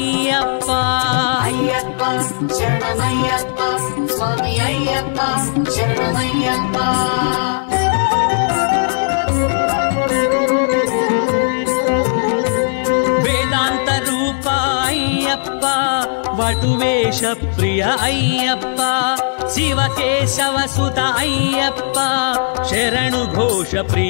అయ్యప్ప శరణమయ్యప్ప స్వామి అయ్యప్ప శరణమయ్యప్ప వేదాంత రూప అయ్యప్ప వటువేష ప్రియ అయ్యప్ప శివకేశవ సుత అయ్యప్ప శరణు ఘోష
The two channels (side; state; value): right; silent; digital silence